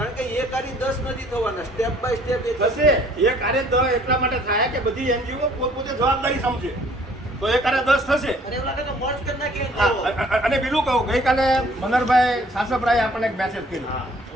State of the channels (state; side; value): normal; both; correlation 0.57